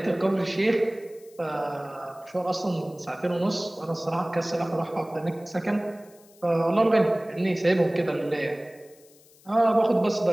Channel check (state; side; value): noise; left; hiss, 27 dB below the sound